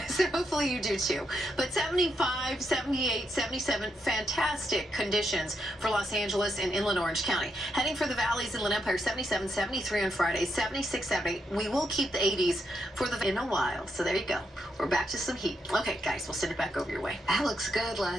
So hopefully you do too. But 75, 78, 77, fantastic conditions for Los Angeles and inland Orange County. Heading for the valleys, Inland Empire, 77, 73 on Friday, 76, 78. We will keep the 80s for in a while. So there you go. We're back to some heat. Okay, guys, we'll send it back over your way. That looks good,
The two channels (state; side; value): normal; both; correlation 0.81